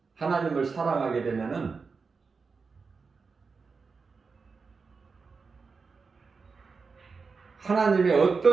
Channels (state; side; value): quieter; left; 4.8 dB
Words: 하나님을 사랑하게 되면은 하나님의